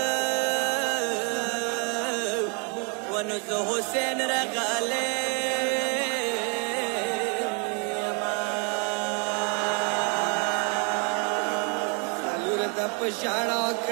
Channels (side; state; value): left; quieter; 36.6 dB